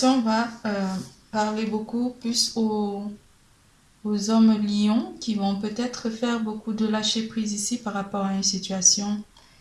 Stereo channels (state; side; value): identical; both; correlation 1.00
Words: va parler beaucoup plus aux hommes lions qui vont peut-être faire beaucoup de lâcher prise ici par rapport à une situation